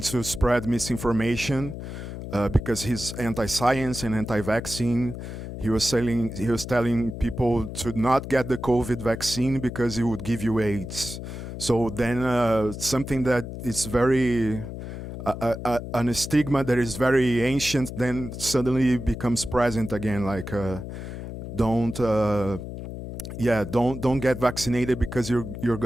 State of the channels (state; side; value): noise; left; hum, 9 dB below the sound